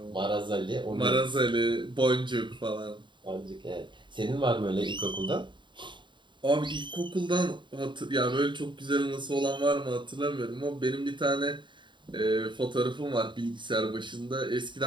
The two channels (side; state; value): left; late; 0.23 ms